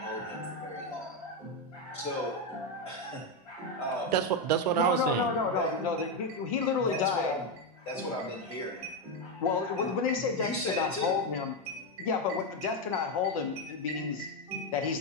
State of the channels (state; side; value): normal; both; correlation 0.07